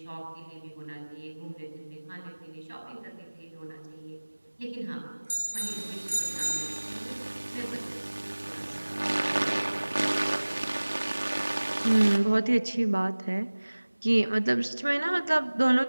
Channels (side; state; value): both; inverted; correlation -1.00